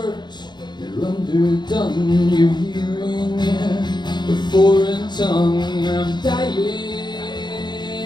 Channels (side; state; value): right; late; 0.21 ms